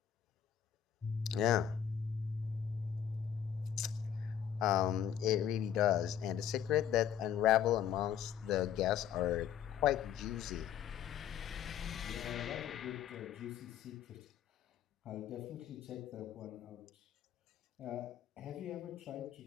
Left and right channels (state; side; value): quieter; right; 9.4 dB